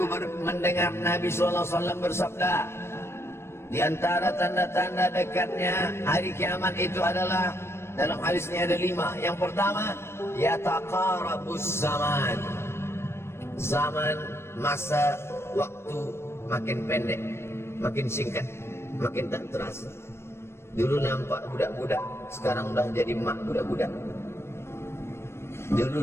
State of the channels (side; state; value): right; late; 0.12 ms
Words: mendengar Nabi SAW bersabda, di antara tanda-tanda dekatnya hari kiamat itu adalah, dalam hadis ini ada 5. Yang pertama, yataqarabus zaman. Zaman, masa, waktu makin pendek, makin singkat, makin tak terasa. Dulu nampak budak-budak, sekarang udah jadi mak budak-budak. Dulu